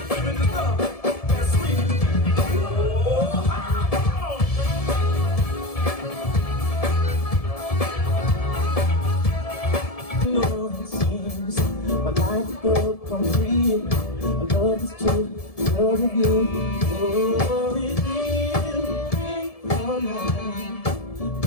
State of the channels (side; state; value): right; late; 1.7 ms